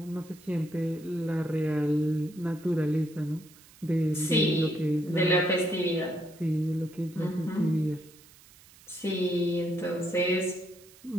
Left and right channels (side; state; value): right; noise; hiss, 24 dB below the sound